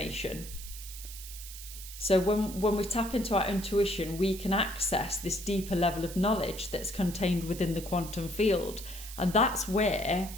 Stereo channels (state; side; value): noise; right; hiss, 12 dB below the sound